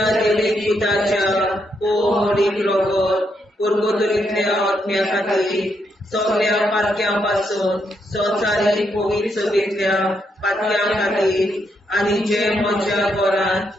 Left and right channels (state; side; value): normal; both; correlation 0.78